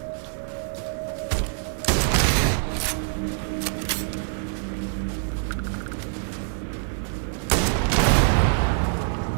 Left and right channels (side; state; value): left; silent; digital silence